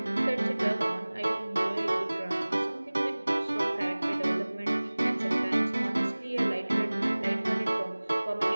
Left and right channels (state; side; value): inverted; both; correlation -1.00